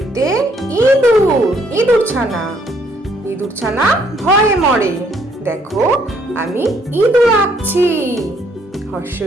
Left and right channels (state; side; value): normal; both; correlation 0.67